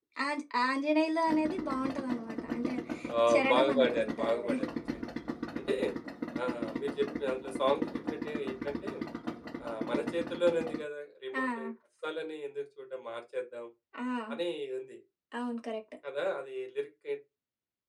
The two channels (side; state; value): both; identical; correlation 1.00